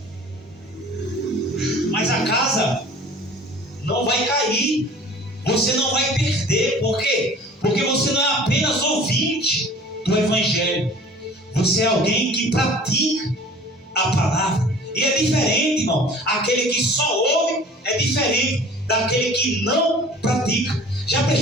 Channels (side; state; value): both; normal; correlation 0.46